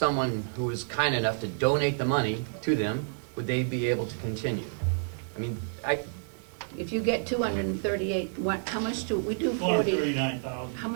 who was kind enough to donate the money to them, would they be able to continue? If you get 238, how much do we do? 439,000. How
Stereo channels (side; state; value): left; silent; 58 dB below the other